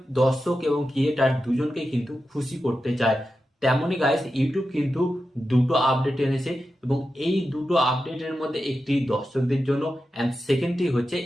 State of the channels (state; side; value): normal; both; correlation 0.91